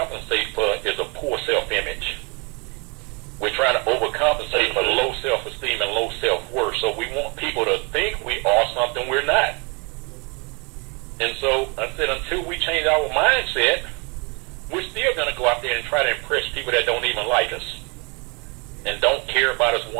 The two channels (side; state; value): left; quieter; 31.8 dB